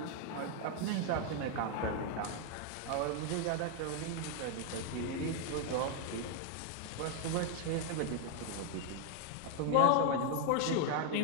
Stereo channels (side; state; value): both; different; correlation 0.00